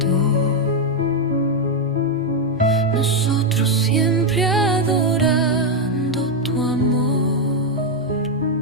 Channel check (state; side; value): normal; both; correlation 0.03